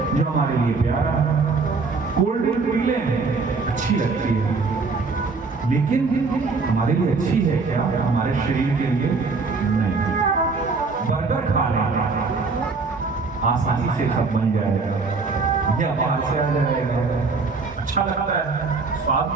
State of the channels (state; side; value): quieter; left; 4.3 dB